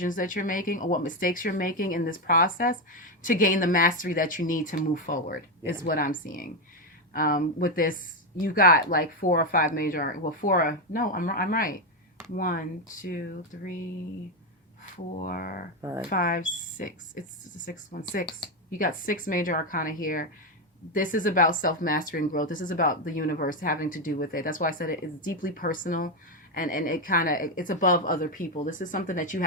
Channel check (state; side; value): normal; both; correlation 0.08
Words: that you're making or what mistakes you're making in this process to gain the mastery that you need to move forward, is what I'm seeing. With this, you got like 4 or 5 major, I'm right. 1, 2, 3, 4, 5, 6. It's the sixth one, 6. You got 6 major arcana here. This is about self-mastery and growth. This is about the universe having to do with it. That's why I said it's deeply personal. And it's above other people. This is something that you